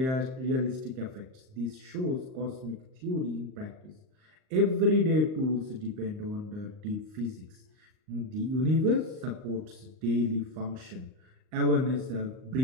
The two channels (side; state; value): left; late; 38 ms